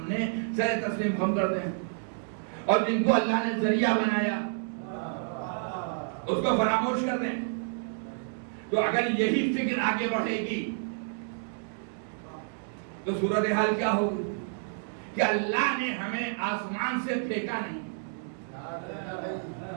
سر تسلیم خم کر دیں، اور جن کو اللہ نے ذریعہ بنایا اس کو فراموش کر دیں۔ تو اگر یہی فکر آگے بڑھے گی تو صورتحال کیا ہوگی کہ اللہ نے ہمیں آسمان سے پھینکا نہیں،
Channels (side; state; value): left; silent; digital silence